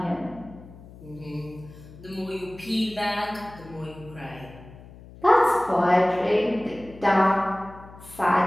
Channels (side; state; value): left; noise; hum, 19 dB below the sound